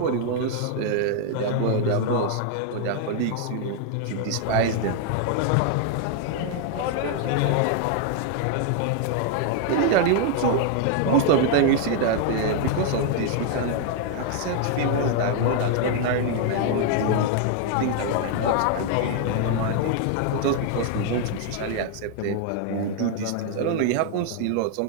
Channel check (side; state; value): both; different; correlation 0.00